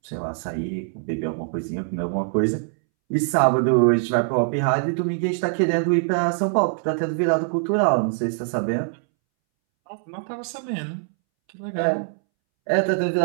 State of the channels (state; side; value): silent; left; 63 dB below the other